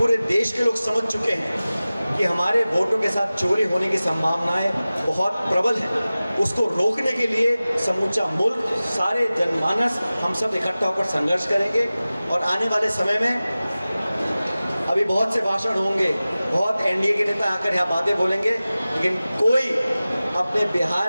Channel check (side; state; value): both; inverted; correlation -0.97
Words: देश के लोग समझ चुके हैं कि हमारे वोटों के साथ चोरी होने की संभावनाएं बहुत प्रबल हैं। उसको रोकने के लिए समूचा मुल्क, सारे जनमानस, हम सब इकट्ठा होकर संघर्ष करेंगे। और आने वाले समय में अभी बहुत से भाषण होंगे, बहुत एनडीए के नेता आकर यहाँ बातें बोलेंगे, लेकिन कोई अपने